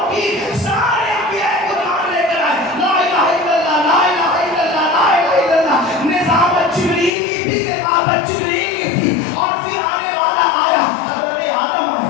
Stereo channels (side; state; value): right; drops out; at 7.1 s